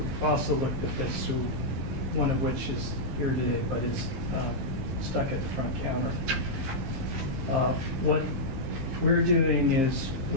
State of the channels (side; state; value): left; late; 15 ms